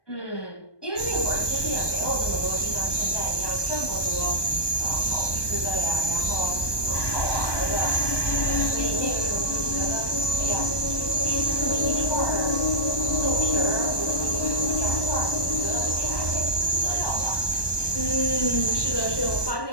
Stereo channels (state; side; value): late; right; 1.2 ms